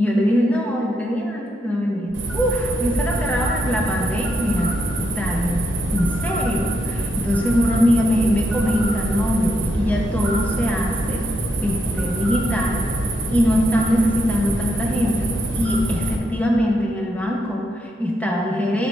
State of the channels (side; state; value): both; normal; correlation 0.80